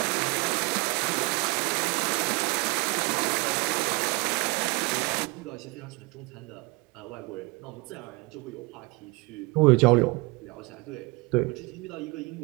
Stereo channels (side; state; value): left; quieter; 26.7 dB